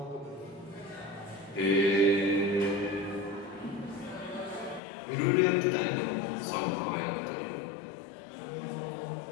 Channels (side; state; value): right; drops out; at 4.8 s